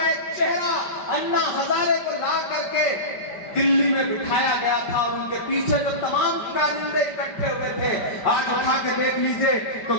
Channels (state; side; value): late; right; 5.2 ms